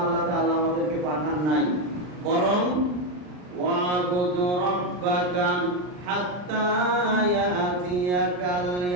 আল্লাহ তাআলা আমাদেরকে পাঠান নাই, বরং ওয়াবুদ রাব্বাকা হাত্তা ইয়াতিয়াকাল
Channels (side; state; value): left; late; 39 ms